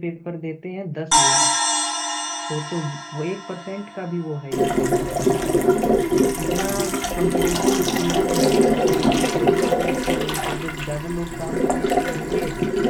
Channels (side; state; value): both; identical; correlation 1.00